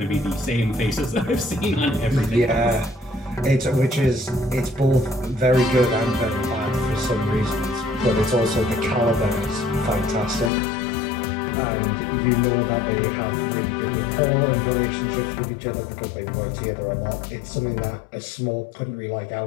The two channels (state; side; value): drops out; right; at 10.5 s